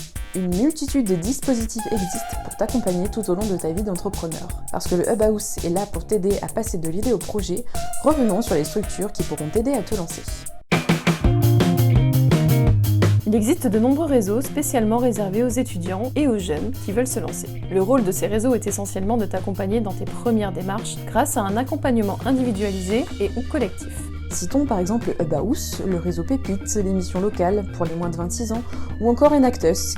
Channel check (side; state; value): both; identical; correlation 1.00